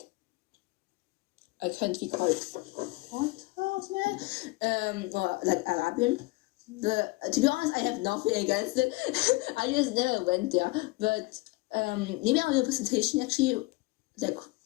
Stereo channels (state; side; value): quieter; right; 23.5 dB